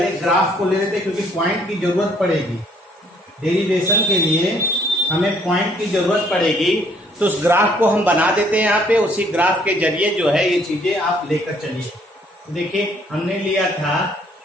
ग्राफ को ले लेते हैं क्योंकि पॉइंट की जरूरत पड़ेगी। डेरिवेशन के लिए हमें पॉइंट की जरूरत पड़ेगी, तो उस ग्राफ को हम बना देते हैं यहाँ पे। उसी ग्राफ के जरिए जो है ये चीजें आप लेकर चलिए। देखिए हमने लिया था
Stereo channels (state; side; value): normal; both; correlation 0.63